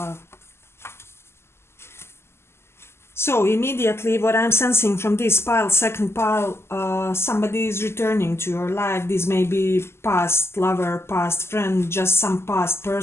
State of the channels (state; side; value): late; right; 0.12 ms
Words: So immediately what I'm sensing from this pile, second pile, somebody is returning to your life. This may be past lover, past friend, just some past